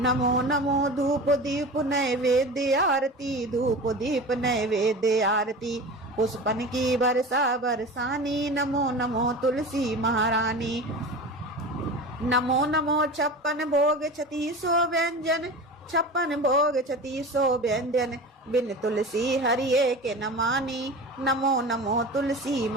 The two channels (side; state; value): both; normal; correlation 0.32